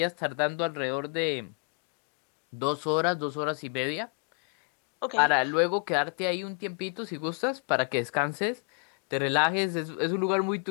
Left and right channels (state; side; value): quieter; right; 37.2 dB